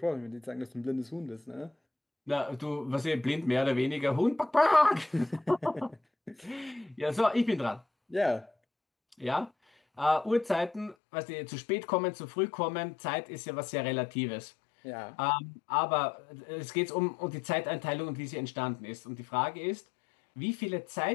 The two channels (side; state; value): right; drops out; at 11.0 s